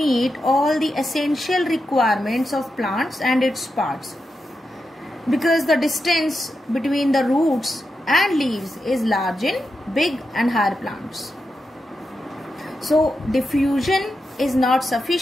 all the essential requirements of plants and its parts, because the distance between the roots and leaves is large in big and higher plants. So diffusion is not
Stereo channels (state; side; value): normal; both; correlation 0.88